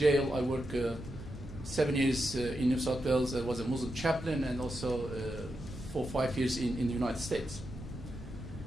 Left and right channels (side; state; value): right; noise; rumble, 13 dB below the sound